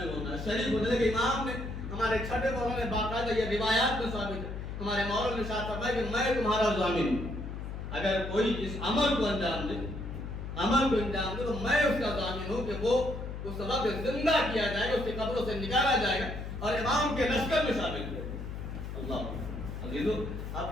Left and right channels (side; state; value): left; noise; hum, 7 dB below the sound